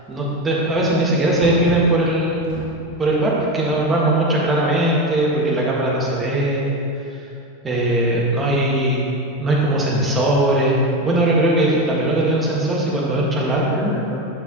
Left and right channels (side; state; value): both; normal; correlation 0.19